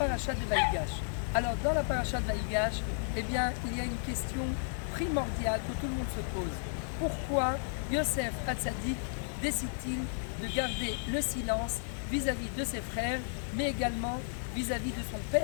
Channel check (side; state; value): right; silent; digital silence